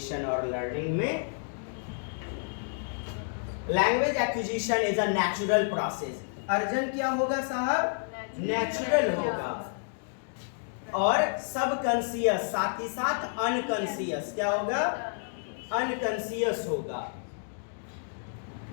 और लर्निंग में। Language acquisition is a natural process. अर्जन क्या होगा साहब? नेचुरल होगा, और सब कॉन्शियस, साथ ही साथ अनकॉन्शियस क्या होगा, अनकॉन्शियस होगा।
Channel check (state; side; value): silent; right; digital silence